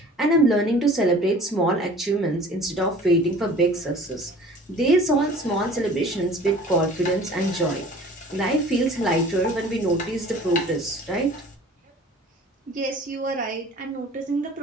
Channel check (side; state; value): both; normal; correlation 0.47